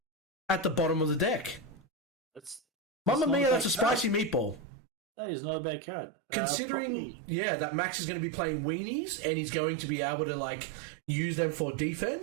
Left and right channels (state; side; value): drops out; left; at 4.7 s